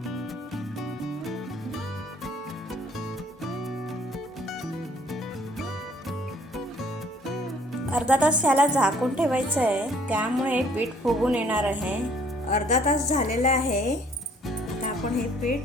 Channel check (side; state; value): both; normal; correlation 0.59